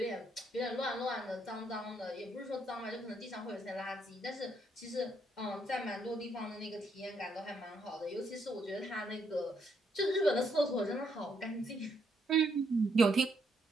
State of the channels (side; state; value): both; normal; correlation 0.74